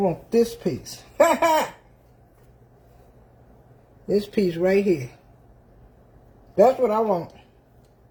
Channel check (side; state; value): both; identical; correlation 1.00